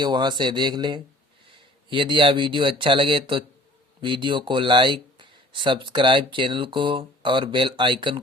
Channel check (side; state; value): both; normal; correlation 0.51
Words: वहां से देख लें। यदि यह वीडियो अच्छा लगे तो वीडियो को लाइक, सब्सक्राइब चैनल को और बेल आइकन